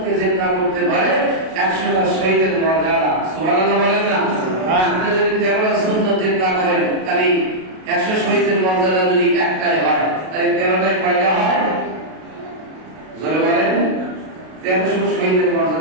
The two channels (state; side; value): late; left; 32 ms